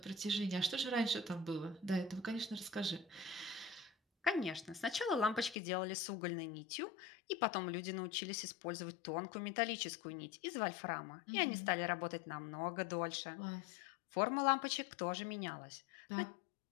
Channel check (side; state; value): right; drops out; at 5.6 s